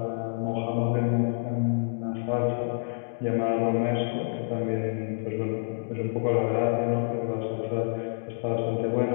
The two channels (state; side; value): silent; right; digital silence